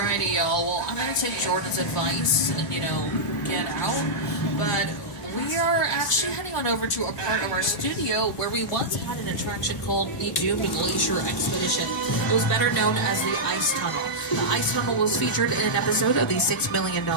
Alrighty, y'all. Well, I'm going to take Jordan's advice and, get out. But we are actually heading on over to a part of our studio where we once had an attraction called the Doomed Glacier Expedition. It was better known as the Ice Tunnel. The Ice Tunnel was featured in an episode of The $6 Million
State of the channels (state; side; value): normal; both; correlation -0.09